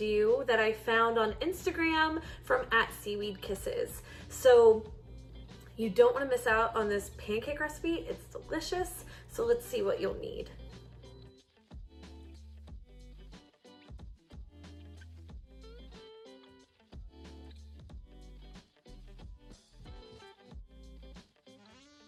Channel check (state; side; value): identical; both; correlation 1.00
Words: that I found on Instagram from @SeaweedKisses. So you don't want to miss out on this pancake recipe. It's delicious. So let's see what you'll need.